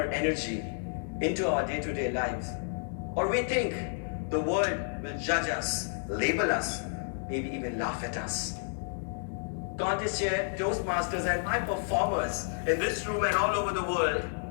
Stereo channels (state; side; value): silent; right; digital silence